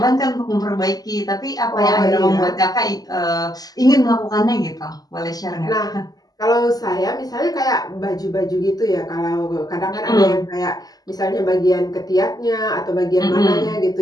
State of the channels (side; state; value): right; late; 0.18 ms